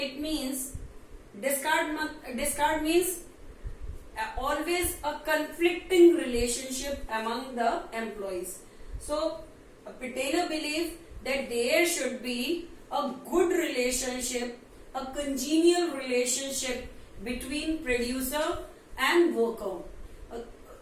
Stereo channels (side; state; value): both; identical; correlation 1.00